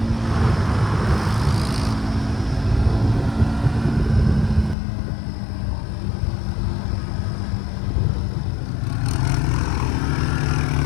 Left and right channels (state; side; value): drops out; right; at 4.8 s